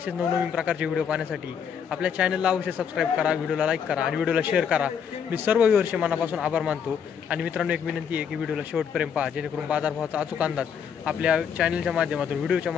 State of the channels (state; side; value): quieter; right; 7.4 dB